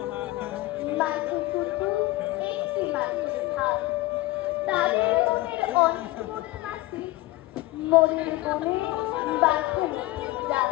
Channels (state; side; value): quieter; right; 18.7 dB